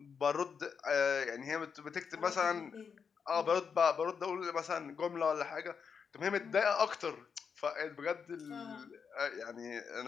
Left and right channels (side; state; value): right; quieter; 6.3 dB